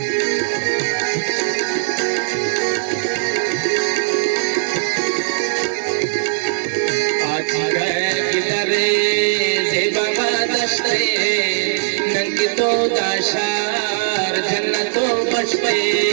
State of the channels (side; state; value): left; silent; digital silence